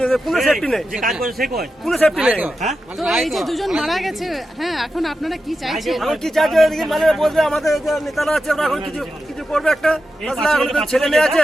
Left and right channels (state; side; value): normal; both; correlation 0.90